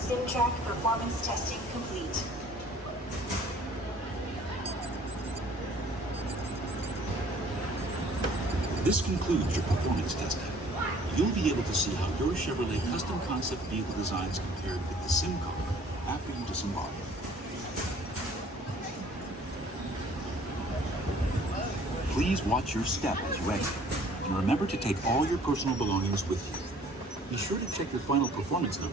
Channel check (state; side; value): normal; both; correlation 0.54